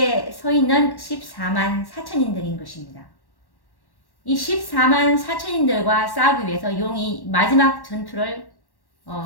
서 있는 14만 4천인들인 것입니다. 이 14만 4천인들과 싸우기 위해서 용이 마지막 전투를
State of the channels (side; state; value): right; late; 1.1 ms